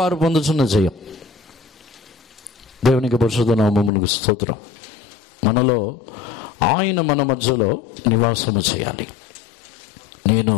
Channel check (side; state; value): right; drops out; at 3.9 s